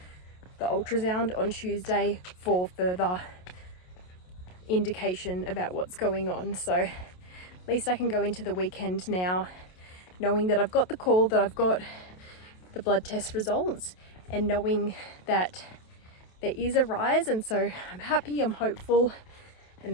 the ultrasound on Tuesday for further indication about what's going on. So at least I can go into the weekend now knowing that I've got the call, that I've got the blood test results, and knowing that there is a rise. And so I'm happy, I'm hopeful, and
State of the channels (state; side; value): late; right; 27 ms